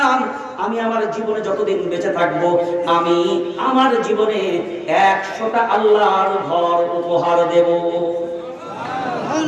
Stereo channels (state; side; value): identical; both; correlation 1.00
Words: আমি আমার জীবনে যতদিন বেঁচে থাকবো আমি আমার জীবনে 100টা আল্লাহর ঘর উপহার দেব।